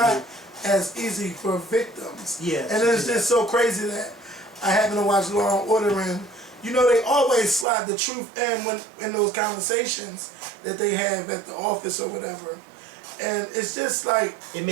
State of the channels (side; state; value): left; drops out; at 7.7 s